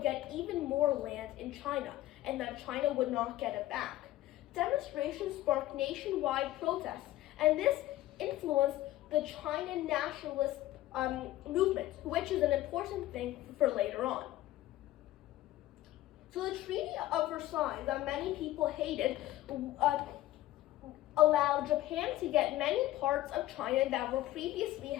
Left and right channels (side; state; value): right; quieter; 15.4 dB